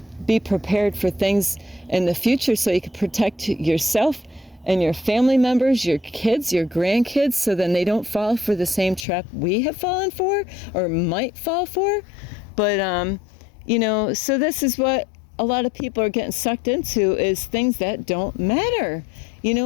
be prepared for things in the future, so you can protect yourself and your family members, your kids, your grandkids, so then they don't fall for the same trap we have fallen for or might fall for. But, you know, so this is what a lot of people are getting sucked into, is things that don't matter. You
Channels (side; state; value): right; drops out; at 9.1 s